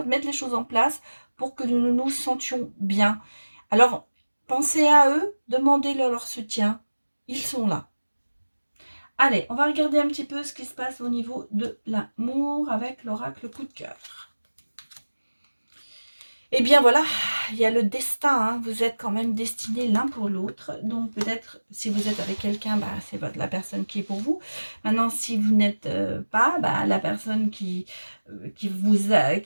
mettent les choses en place pour que nous nous sentions bien. Alors, pensez à eux, demandez-leur leur soutien. Ils sont là. Allez, on va regarder un petit peu ce qui se passe au niveau de l'amour avec l'oracle coup de cœur. Eh bien voilà, il y a le destin, hein. Vous êtes quand même destinés l'un pour l'autre. Donc peut-être si vous êtes avec quelqu'un, bah, c'est la personne qui est pour vous. Maintenant, si vous n'êtes pas, bah, la personne qui vous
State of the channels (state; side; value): inverted; both; correlation -1.00